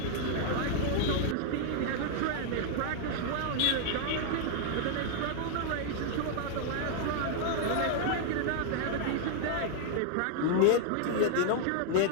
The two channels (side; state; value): both; different; correlation -0.01